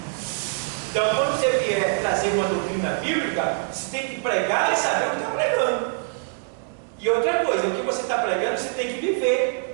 Então, quando você vier trazer uma doutrina bíblica, você tem que pregar e saber o que está pregando. E outra coisa, o que você está pregando, você tem que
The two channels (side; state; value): left; silent; 61 dB below the other